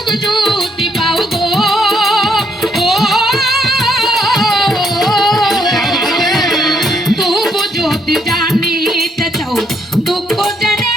যদি পাও গো তবু যদি জানিতে চাও দুঃখ জেনে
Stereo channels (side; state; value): both; normal; correlation 0.73